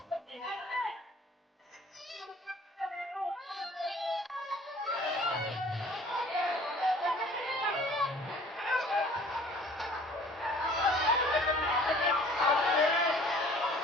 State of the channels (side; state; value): both; normal; correlation 0.51